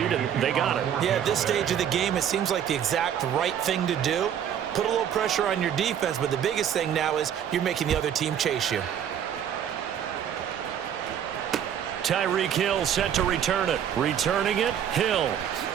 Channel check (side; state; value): left; quieter; 9.2 dB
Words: and they got it. Yeah, at this stage of the game, it seems like the exact right thing to do. Put a little pressure on your defense, but the biggest thing now is you're making the other team chase you. Tyreek Hill set to return it. Returning it, Hill.